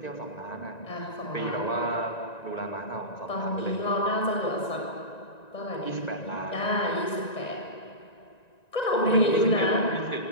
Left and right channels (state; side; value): late; right; 1.9 ms